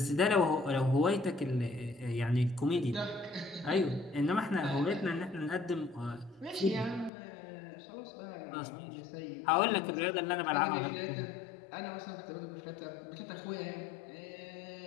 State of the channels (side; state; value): right; drops out; at 7.1 s